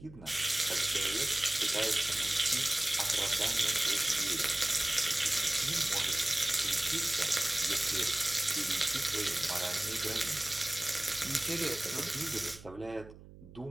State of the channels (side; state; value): right; noise; hum, 19 dB below the sound